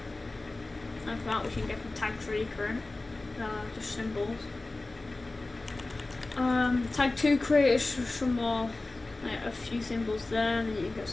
like that, which you can get from tag 3 current. Just symbols. Tag 2 creators some more, like a few symbols there, and then you can get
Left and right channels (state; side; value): quieter; right; 3.1 dB